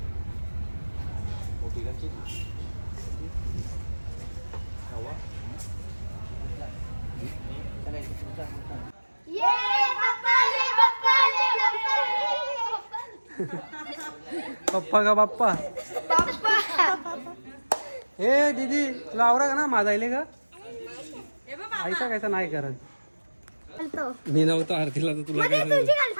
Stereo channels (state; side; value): inverted; both; correlation -1.00